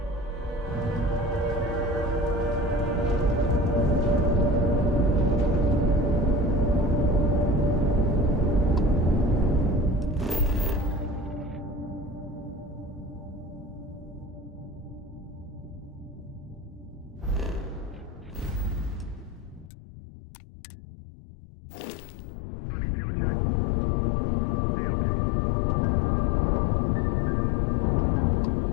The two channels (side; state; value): right; drops out; at 19.7 s